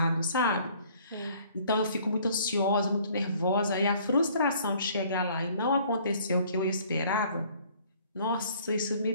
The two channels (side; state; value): both; inverted; correlation -0.57